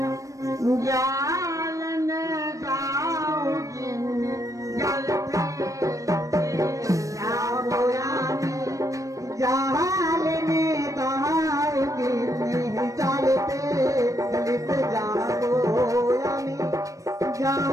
জাল নে দাও জালতে যাবো আমি জাল নে দাও জালতে লিতে যাবো আমি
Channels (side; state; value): left; late; 0.16 ms